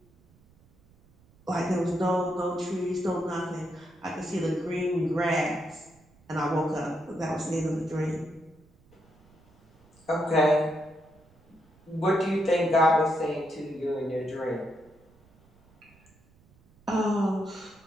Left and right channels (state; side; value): noise; right; rumble, 30 dB below the sound